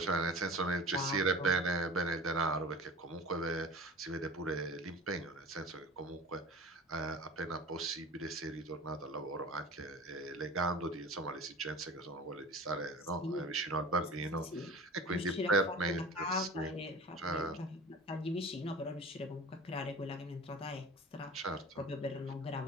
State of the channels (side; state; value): both; normal; correlation 0.37